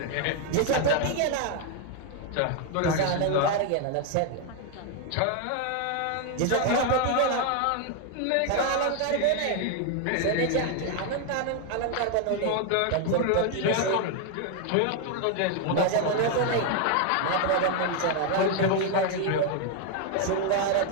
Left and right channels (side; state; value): both; different; correlation 0.01